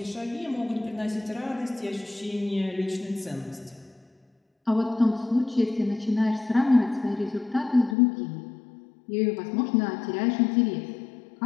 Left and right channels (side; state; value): right; drops out; at 8.0 s